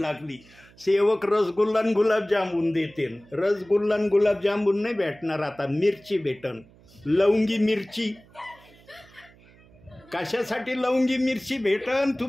सेवक रसगुल्ला आणि गुलाबजामुन देतील. रसगुल्ला आणि गुलाबजामुन नाही भेटणार, आता मिरची भेटन, लवंगी मिरची. कशासाठी लवंगी मिरची भेटन?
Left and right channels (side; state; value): right; noise; hum, 26 dB below the sound